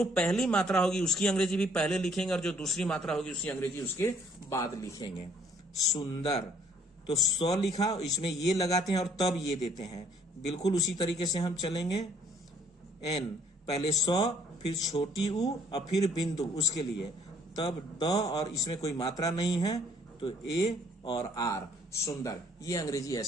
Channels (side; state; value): both; normal; correlation 0.63